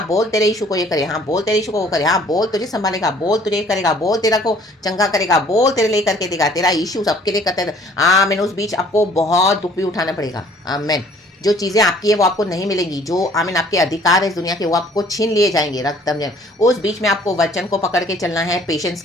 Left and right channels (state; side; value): normal; both; correlation 0.57